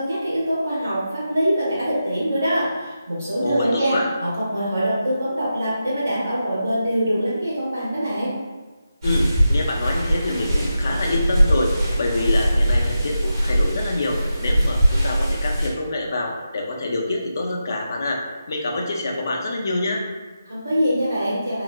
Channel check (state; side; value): inverted; both; correlation -0.89